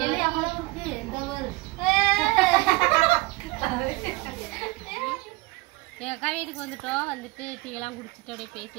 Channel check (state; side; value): quieter; left; 22.3 dB